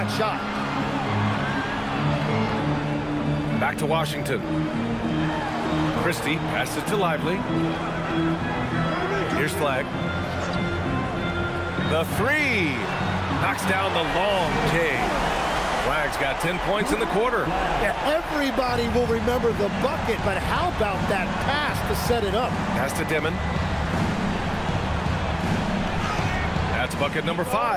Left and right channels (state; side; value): identical; both; correlation 1.00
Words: shot. Back to Washington. Christie passes to Lively. Here's Flagg. The three. Knocks down the long K. Flagg's got 10 points in the quarter. Yeah, everybody will remember the bucket, but how about that pass to set it up? Pass to Dimon. That's bucket number